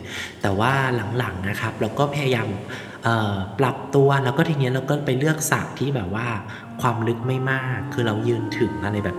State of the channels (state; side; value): identical; both; correlation 1.00